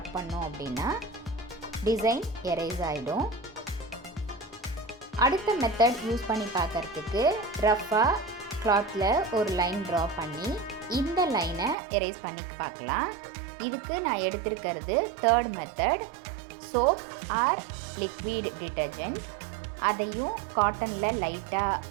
பண்ணோம் அப்படின்னா டிசைன் எரேஸ் ஆகிடும். அடுத்த மெத்தட் யூஸ் பண்ணி பார்க்குறதுக்கு ரஃப்பாக கிளாத்தில் ஒரு லைன் ட்ரா பண்ணி இந்த லைனை எரேஸ் பண்ணி பார்க்கலாம். இதுக்கு நான் எடுத்திருக்கிறது third method, soap or liquid detergent. அதையும் காட்டனில் லைட்டாக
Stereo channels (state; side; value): drops out; left; at 11.8 s